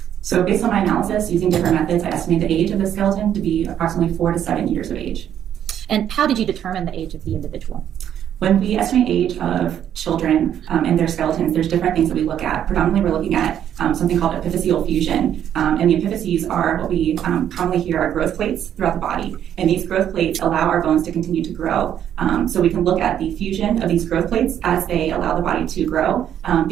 So based on my analysis, using different methods, I estimate the age of the skeleton to be approximately 4 to 7 years of age. And how did you determine the age of the individual? When we estimate age of children and their skeletons, there's different things that we look at. Predominantly, we're looking at something called epiphyseal fusion. And the epiphyses are what we commonly hear are growth plates throughout the body. And these growth plates allow our bones to continue to grow. So we can look at the fusion of these growth plates as they allow the body to grow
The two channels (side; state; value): left; quieter; 10.0 dB